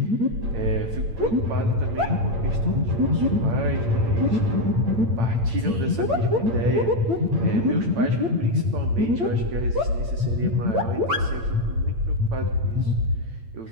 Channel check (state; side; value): late; left; 8.8 ms